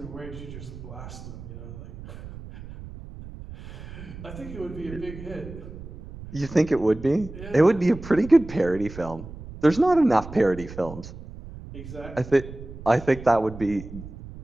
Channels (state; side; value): noise; right; rumble, 13 dB below the sound